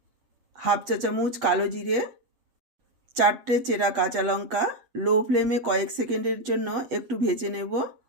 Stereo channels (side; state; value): left; late; 8.0 ms